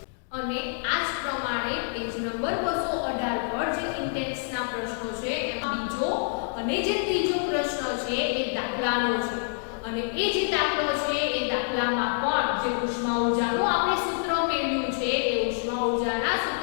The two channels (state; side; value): silent; right; digital silence